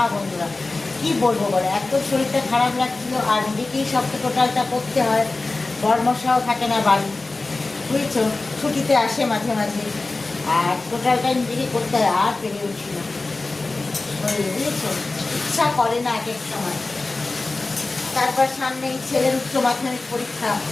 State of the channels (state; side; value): quieter; right; 3.3 dB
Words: বন্ধুরা। কি বলবো বলো, এত শরীরটা খারাপ লাগছিল, আর নিজেকেই সব টোটালটা করতে হয়। বর্মশাও থাকে না বাড়ি, বুঝছো, ছুটিতে আসে মাঝে মাঝে, আর টোটালটা নিজেকে করতে হয়, আর পেরে উঠি না, বুঝেছো, ইচ্ছা করে না এক এক সময়। তারপর সামনে ছেলের উচ্চ মাধ্যমিক পরীক্ষা